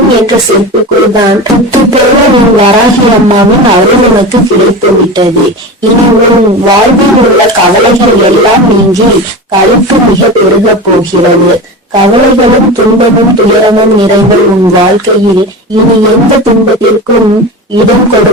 என்ற செருப்புக்குள் தான் துத்து போல என் வராகி அம்மாவின் அருள் எனக்கு கிடைத்து விட்டது. இனி உன் வாழ்வில் உள்ள கவலைகள் எல்லாம் நீங்கி களிப்பு மிக பெருகப் போகிறது. கவலைகளும் துன்பமும் துயரமும் நிறைந்த உன் வாழ்க்கையில் இனி எந்த துன்பத்திற்கும் இடம்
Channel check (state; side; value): normal; both; correlation 0.27